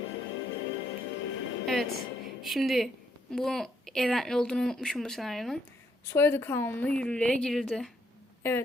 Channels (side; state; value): both; normal; correlation 0.73